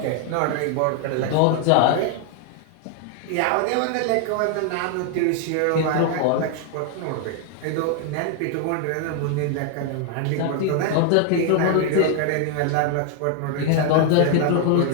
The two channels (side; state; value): both; different; correlation 0.00